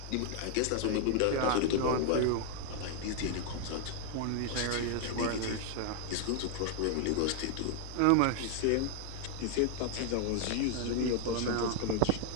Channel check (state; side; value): different; both; correlation 0.00